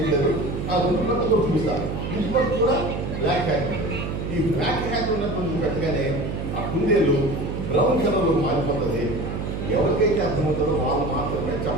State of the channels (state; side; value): noise; right; hum, 4 dB below the sound